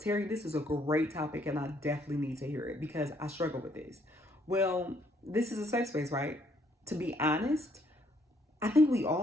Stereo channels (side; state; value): both; normal; correlation 0.68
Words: this is a great topic, and I definitely need to hear it because I struggle with this. Well, this is a safe space, right? To be honest, I think we